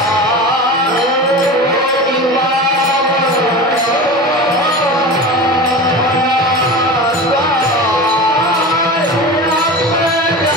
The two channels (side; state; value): both; normal; correlation 0.30